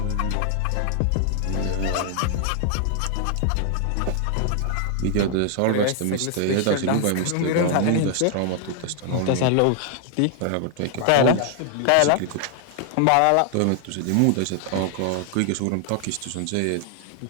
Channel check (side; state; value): both; different; correlation 0.00